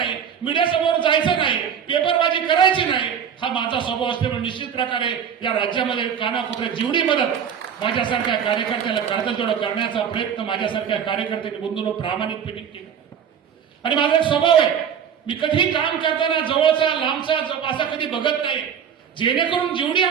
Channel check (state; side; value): quieter; left; 8.0 dB